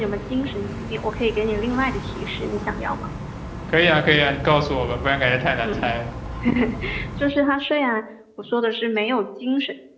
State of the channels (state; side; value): identical; both; correlation 1.00